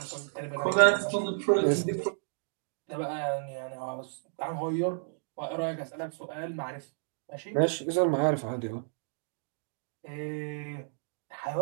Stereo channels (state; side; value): silent; left; digital silence